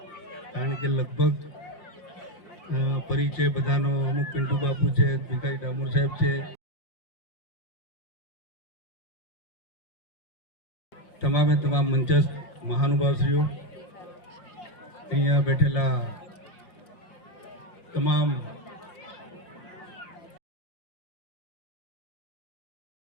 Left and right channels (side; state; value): right; late; 5.6 ms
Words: કારણ કે લગભગ પરિચય બધાનો અમુક પિન્ટુ બાપુ છે, ભીખાઈ ડામોર સાહેબ છે, તમામે તમામ મંચસ્થ મહાનુભાવશ્રીઓ, અહીંયા બેઠેલા તમામ